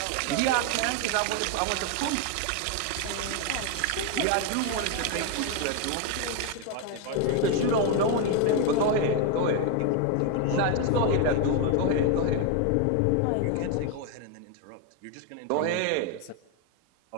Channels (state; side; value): different; both; correlation 0.01